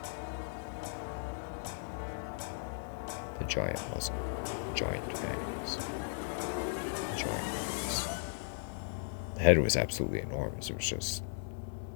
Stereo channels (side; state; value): right; silent; digital silence